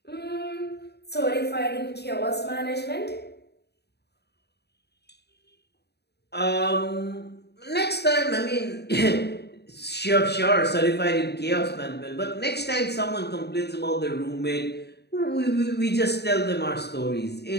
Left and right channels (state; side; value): late; right; 0.48 ms